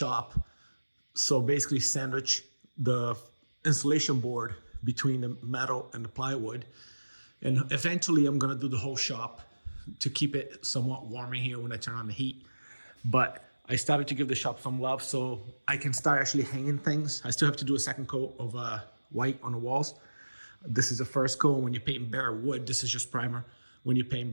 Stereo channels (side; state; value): both; inverted; correlation -1.00